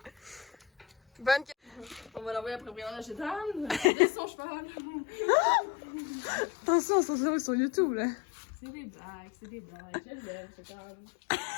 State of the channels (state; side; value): drops out; right; at 3.9 s